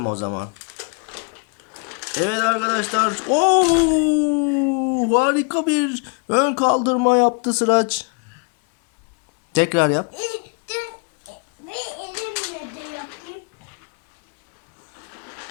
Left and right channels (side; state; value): right; quieter; 35.4 dB